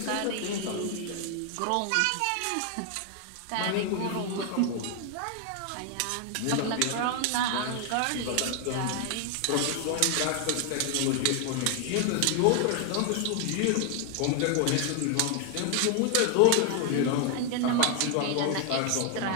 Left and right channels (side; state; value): both; different; correlation 0.00